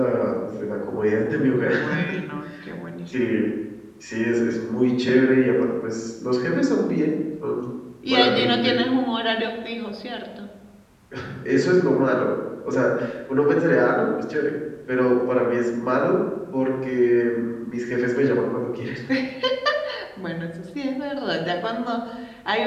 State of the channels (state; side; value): identical; both; correlation 1.00